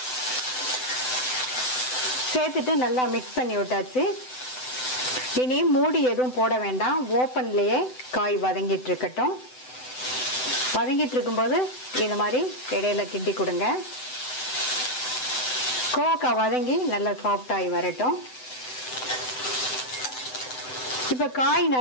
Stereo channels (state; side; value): late; right; 7.9 ms